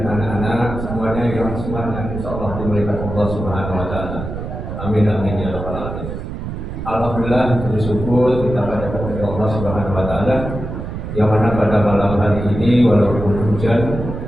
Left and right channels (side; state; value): right; noise; rumble, 7 dB below the sound